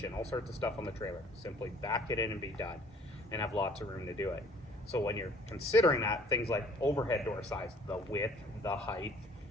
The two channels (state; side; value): normal; both; correlation 0.55